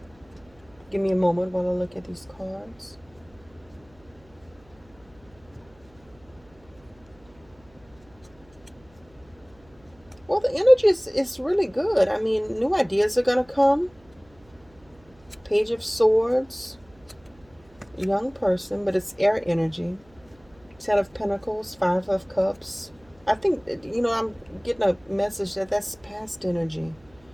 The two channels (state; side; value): noise; right; hum, 28 dB below the sound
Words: Give me a moment while I look at these cards. Well, the energy is really good. I mean, new ideas are going to come. Page of Swords, young person, but it's air energy. Ten of Pentacles, Five of Cups. I think, I'm getting a message that that's past energy.